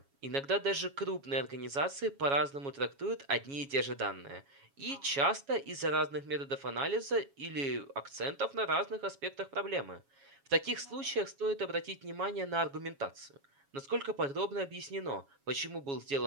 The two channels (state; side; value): late; left; 7.2 ms